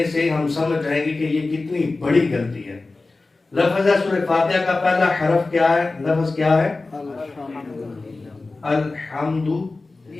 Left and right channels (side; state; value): right; quieter; 3.5 dB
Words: سے ہم سمجھ جائیں گے کہ یہ کتنی بڑی غلطی ہے۔ لفظ ہے سورہ فاتحہ کا پہلا حرف کیا ہے؟ لفظ کیا ہے؟ الحمد